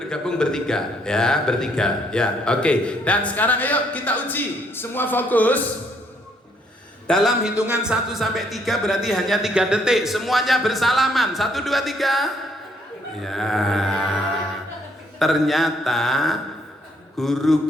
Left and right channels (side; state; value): both; normal; correlation 0.69